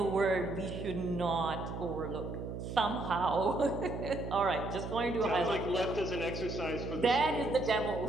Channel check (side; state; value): right; noise; hum, 7 dB below the sound